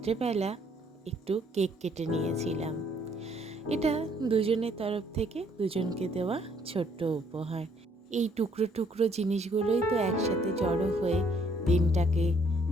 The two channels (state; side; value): normal; both; correlation 0.66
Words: একটু কেক কেটে নিয়েছিলাম। এটা দুজনের তরফ থেকে দুজনকে দেওয়া ছোট্ট উপহার। এই টুকরো টুকরো জিনিসগুলোই তো একসাথে জড়ো হয়ে দিনটাকে,